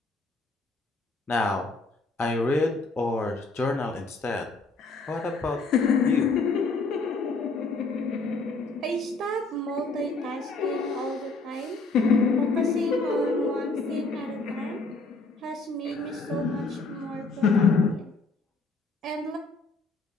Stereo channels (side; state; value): right; quieter; 3.7 dB